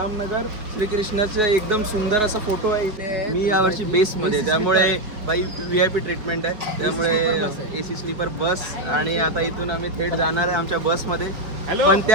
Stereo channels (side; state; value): left; late; 4.8 ms